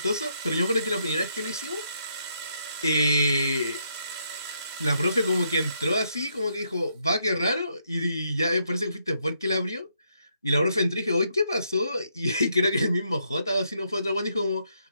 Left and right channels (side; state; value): both; inverted; correlation -0.76